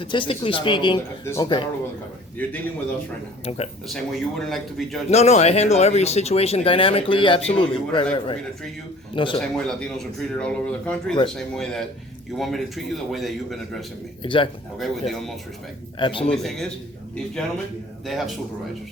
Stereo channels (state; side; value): normal; both; correlation 0.49